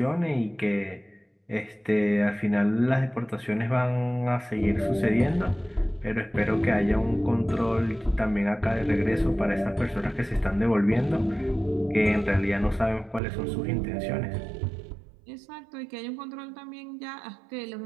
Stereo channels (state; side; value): drops out; left; at 13.2 s